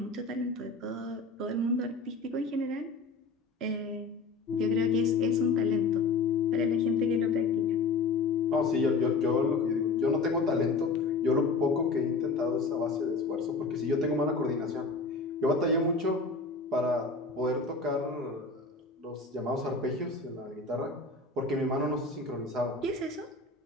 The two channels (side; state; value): right; quieter; 3.9 dB